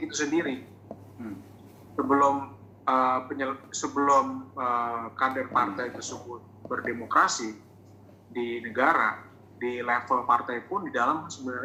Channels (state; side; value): identical; both; correlation 1.00